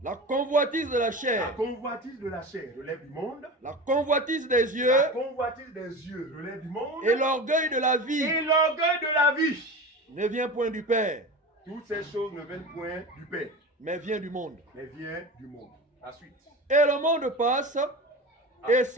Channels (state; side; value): normal; both; correlation 0.30